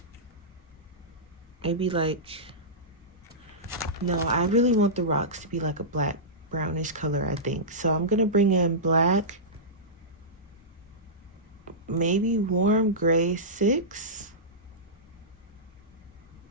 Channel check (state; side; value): normal; both; correlation -0.16